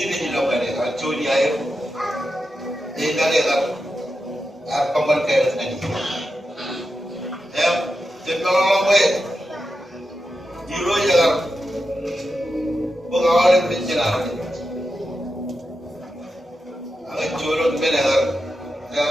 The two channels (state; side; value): normal; both; correlation 0.89